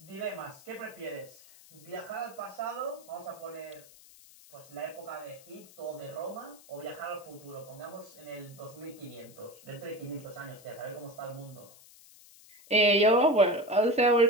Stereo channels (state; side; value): noise; left; hiss, 22 dB below the sound